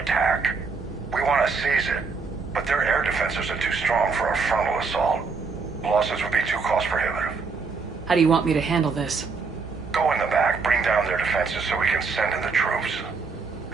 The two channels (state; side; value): quieter; left; 4.7 dB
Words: We want to seize it, but their air defenses are too strong for a frontal assault. Losses would be too cost prohibitive. How do you want me to handle this? Go in the back, bring down their defenses so we can send in the troops.